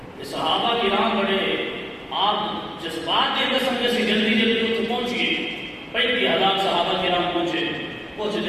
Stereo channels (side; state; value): both; identical; correlation 1.00